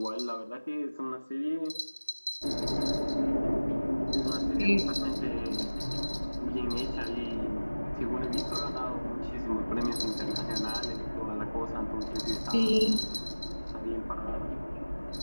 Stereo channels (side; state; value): both; inverted; correlation -1.00